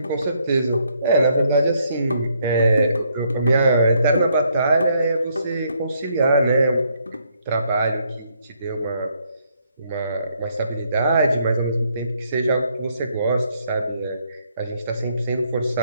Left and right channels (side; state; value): both; inverted; correlation -0.72